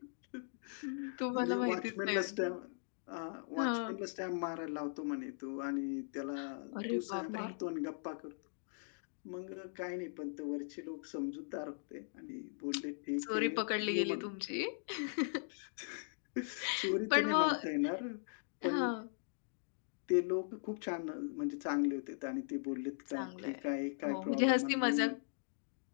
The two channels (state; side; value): silent; right; digital silence